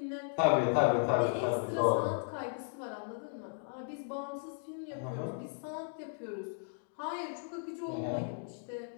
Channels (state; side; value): silent; right; digital silence